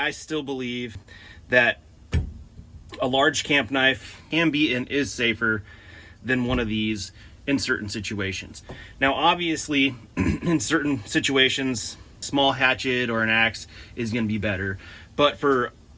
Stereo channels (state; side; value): identical; both; correlation 1.00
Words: still believe that a large camp knife can be and is safer than one of these in certain situations. Now obviously in certain situations small hatchet or an axe is going to be better, but for